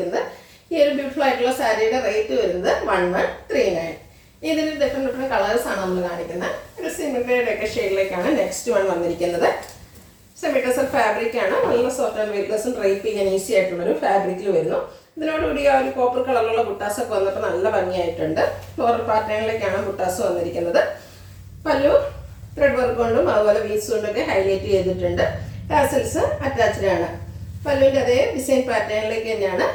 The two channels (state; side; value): identical; both; correlation 1.00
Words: ഈ ഒരു ബ്യൂട്ടിഫുൾ ആയിട്ടുള്ള സാരിയുടെ റേറ്റ് വരുന്നത് 1139. ഇതിന് ഡിഫറെൻറ്റ് കളേഴ്സാണ് നമ്മൾ കാണിക്കുന്നത്. ഒരു സിമിലറുടെ ഒക്കെ ഷെയ്ഡിലേക്കാണ് നെക്സ്റ്റ് വൺ വന്നിരിക്കുന്നത്. സെമി ടസർ ഫാബ്രിക്കാണ്. നല്ല സോഫ്റ്റ് ആൻഡ് വെയ്റ്റ്ലെസ്സും ഡ്രൈപ്പ് ചെയ്യാൻ ഈസി ആയിട്ടുള്ളൊരു ഫാബ്രിക്കിൽ വരുന്നു. ഇതിനോടുകൂടി ആ ഒരു കോപ്പർ കളറിലുള്ള ബുട്ടാസൊക്കെ വന്നപ്പോൾ നല്ല ഭംഗിയായിട്ടുണ്ട്. ഫ്ലോറൽ പാറ്റേണിലേക്കാണ് ബുട്ടാസ് വന്നിരിക്കുന്നത്. പല്ലു ത്രെഡ് വർക്ക് കൊണ്ടും അതുപോലെ വീസ് കൊണ്ടൊക്കെ ഹൈലൈറ്റ് ചെയ്തിട്ടുണ്ട്. ടാസൽസ് അറ്റാച്ച്ഡ് ആണ്. പല്ലുവിൻ്റെ അതേ ഡിസൈൻ പാറ്റേണിലേക്ക് തന്നെയാണ്